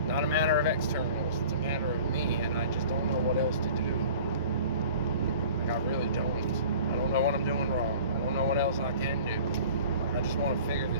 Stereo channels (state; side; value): inverted; both; correlation -0.45